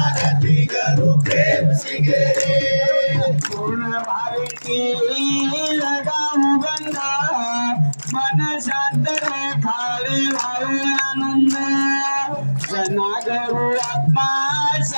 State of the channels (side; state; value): both; inverted; correlation -1.00